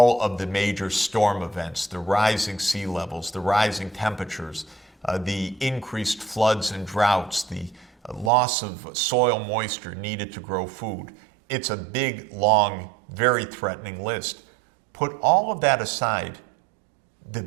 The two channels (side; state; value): left; drops out; at 8.3 s